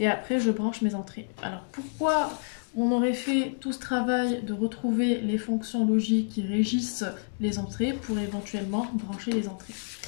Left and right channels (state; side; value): silent; right; digital silence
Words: après, je branche mes entrées. Alors, pourquoi on aurait fait tout ce travail de retrouver les fonctions logiques qui régissent les entrées pour éventuellement brancher les entrées?